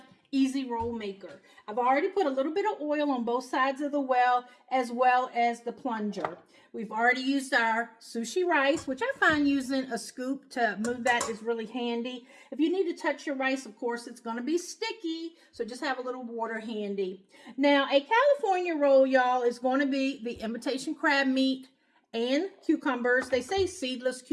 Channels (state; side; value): identical; both; correlation 1.00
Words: Easy Roll Maker. I've already put a little bit of oil on both sides of the well as the plunger. We've already used our sushi rice, which I find using a scoop to move that is really handy. If you need to touch your rice, of course, it's going to be sticky, so just have a little water handy. Now, a California roll, y'all, is going to be the imitation crab meat and cucumbers. They say seedless